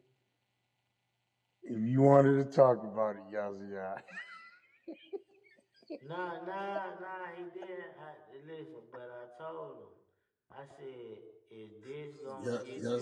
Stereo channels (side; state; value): both; identical; correlation 1.00